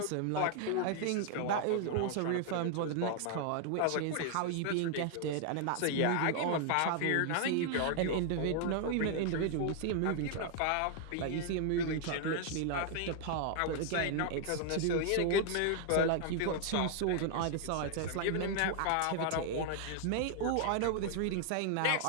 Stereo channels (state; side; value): different; both; correlation 0.00